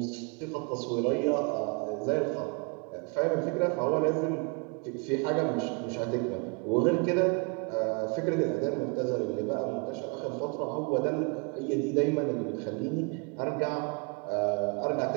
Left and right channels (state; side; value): quieter; left; 33.8 dB